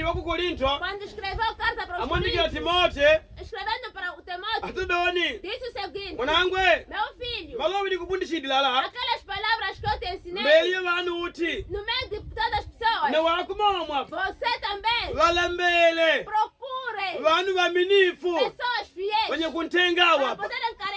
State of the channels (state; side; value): identical; both; correlation 1.00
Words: ku Korinto, quando escreveu carta para os amwandikia Coríntios, Timote, escrevendo para o Timóteo, atudoni. disse o seguinte: Mwanangwe, meu filho, malobi nikufundishidilala. aquelas palavras que eu te ensinei, Mbele vanu uti. no meio de todas as pessoas, Na wakumomwa. você também Wala mbele. procure Vanu vaminifu. pessoas fiéis Wenye kuntenga para wapa. poderem